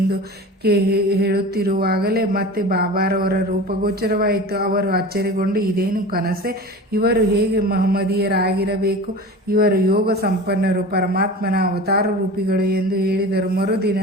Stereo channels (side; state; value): both; normal; correlation 0.34